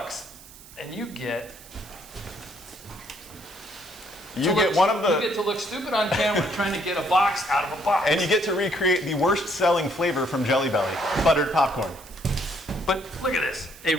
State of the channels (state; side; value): noise; right; hiss, 20 dB below the sound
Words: and you get one of the. You get to look stupid on camera trying to get a box out of a box. And you get to recreate the worst selling flavor from Jelly Belly, buttered popcorn. But look at this, a